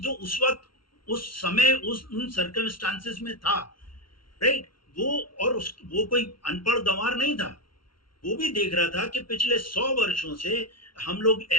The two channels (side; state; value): right; late; 0.74 ms